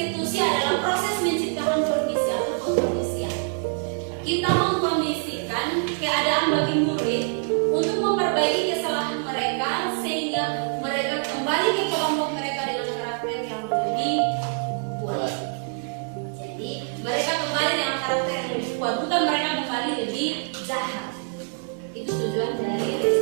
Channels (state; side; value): silent; left; 62 dB below the other